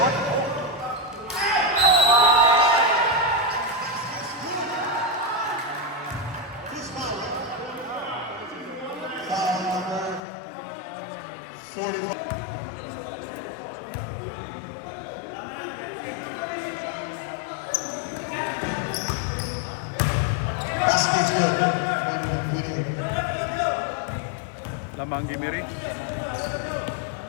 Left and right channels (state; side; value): drops out; right; at 10.2 s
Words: Foul number 45. Basket's good. One winning. Lamang Gimiri.